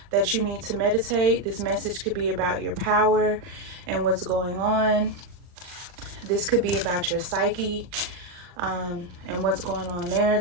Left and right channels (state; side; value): late; left; 40 ms